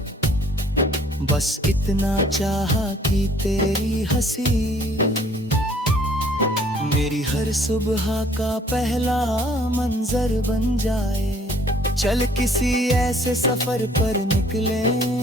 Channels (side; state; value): both; normal; correlation 0.58